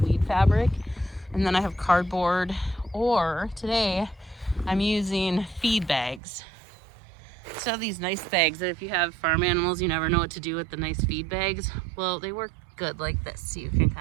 fabric, and then I have cardboard, or today I'm using feed bags. So these nice bags that if you have farm animals, you never know what to do with the nice feed bags. Well, they work good like this, so you can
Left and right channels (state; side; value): drops out; left; at 6.2 s